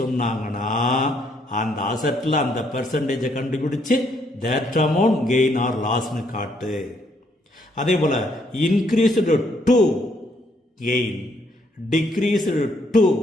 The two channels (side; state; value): both; normal; correlation 0.71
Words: சொன்னாங்கன்னா அந்த அசட்டில் அந்த பெர்சன்டேஜை கண்டுபிடிச்சு தட் அமௌண்ட் கெயின் ஆர் லாஸ்னு காட்டு. அதே போல் increased to gain, decreased to